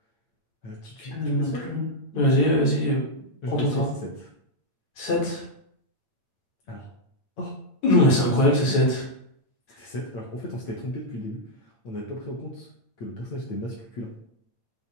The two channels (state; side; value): late; right; 9.0 ms